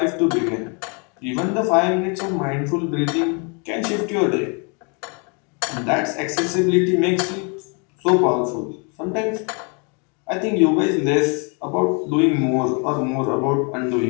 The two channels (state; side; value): quieter; right; 35.2 dB